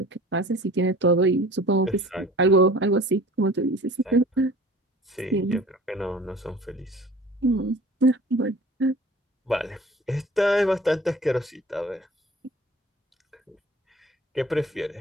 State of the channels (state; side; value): normal; both; correlation 0.45